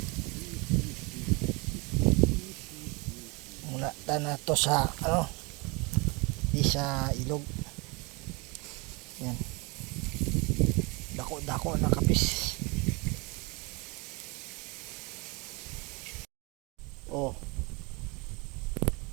Na to sa di sa ilog. Yan. Dako na kapis. Oh.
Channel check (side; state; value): left; quieter; 28.1 dB